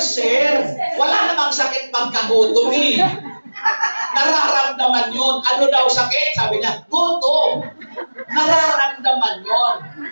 Wala namang sakit pagkagutom eh. Nararamdaman yun. Ano daw sakit? Sabi niya, gutom. Nararamdaman yun.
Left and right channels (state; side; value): inverted; both; correlation -1.00